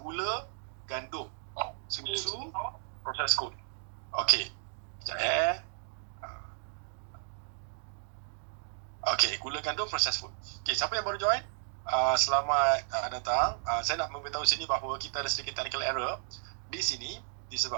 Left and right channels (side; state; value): left; silent; digital silence